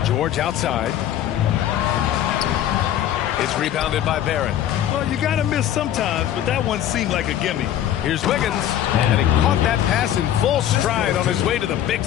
George outside. It's rebounded by Barrett. Well, you got to miss sometimes, but that one seemed like a gimme. Here's Wiggins, and he caught that pass in full stride on his way to the big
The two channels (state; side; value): quieter; right; 11.2 dB